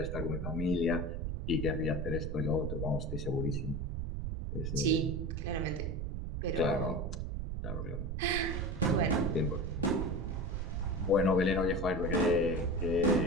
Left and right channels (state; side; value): noise; right; rumble, 3 dB below the sound